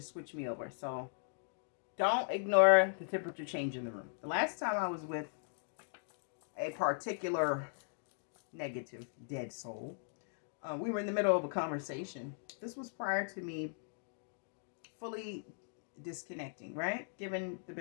switch me over. So don't ignore the temperature change in the room. The last time I was with a particular negative dead soul, we were in the middle of a conversation. This was prior to me fully disconnecting, right? Given the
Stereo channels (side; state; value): right; silent; digital silence